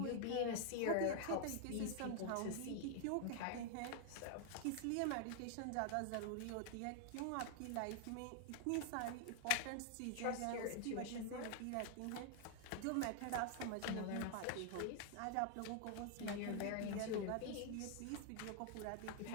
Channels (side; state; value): both; different; correlation 0.00